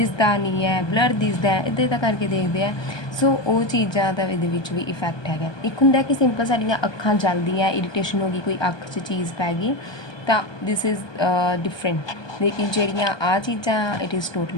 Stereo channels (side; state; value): right; late; 1.2 ms